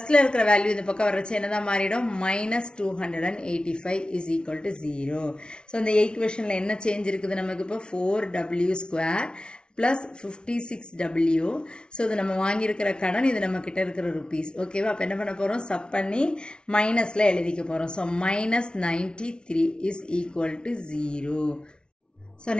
இருக்கிற வேல்யூ இந்த பக்கம் வர்றச்சு என்னதான் மாறிடும், -285 இஸ் ஈக்குவல் டு 0. ஸோ இந்த ஈக்குவேஷனில் என்ன சேஞ்ச் இருக்குது நமக்கு, இப்போ 4W² ப்ளஸ் 56W. ஸோ இது நம்ம வாங்கியிருக்கிற கடன், இது நம்ம கிட்ட இருக்கிற ருபீஸ். ஓகேவா. அப்போ என்ன பண்ண போகிறோம், சப் பண்ணி மைனஸில் எழுதிக்க போகிறோம். So -93 is equal to 0. So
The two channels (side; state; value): right; late; 0.056 ms